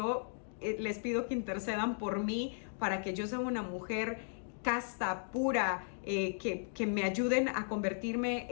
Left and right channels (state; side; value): silent; right; digital silence